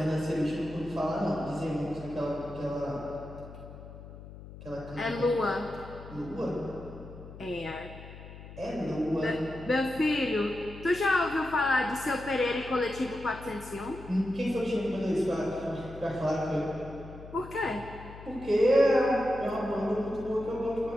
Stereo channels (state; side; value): noise; left; hum, 15 dB below the sound